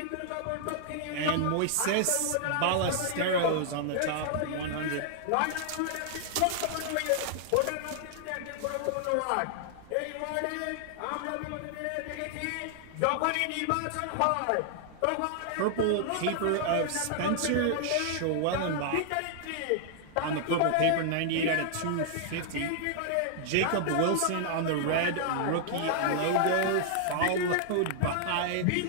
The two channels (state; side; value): different; both; correlation -0.01